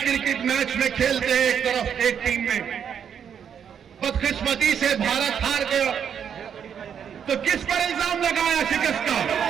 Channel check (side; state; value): left; quieter; 8.0 dB